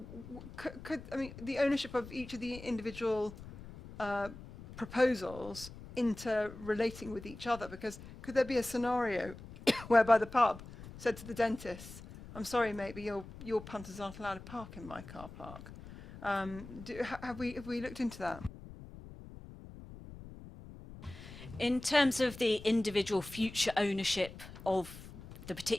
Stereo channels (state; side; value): noise; left; rumble, 15 dB below the sound